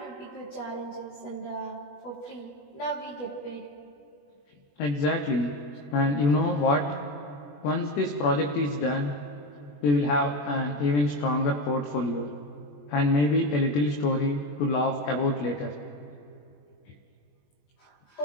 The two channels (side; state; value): right; late; 21 ms